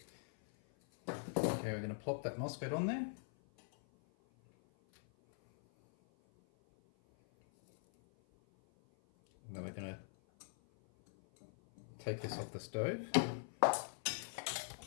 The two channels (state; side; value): silent; right; 50 dB below the other